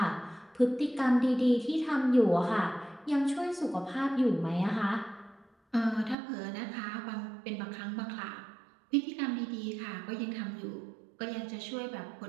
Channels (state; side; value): drops out; left; at 6.2 s